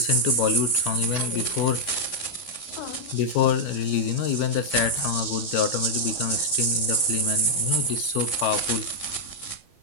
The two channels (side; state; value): right; late; 11 ms